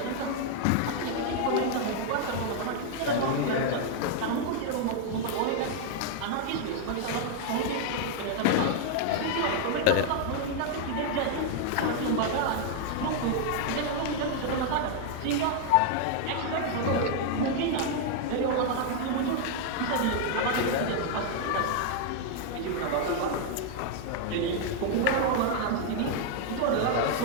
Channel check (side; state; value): both; different; correlation 0.00